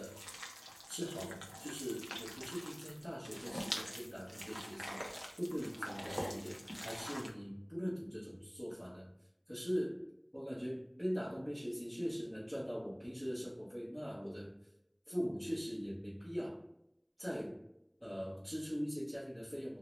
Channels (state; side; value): identical; both; correlation 1.00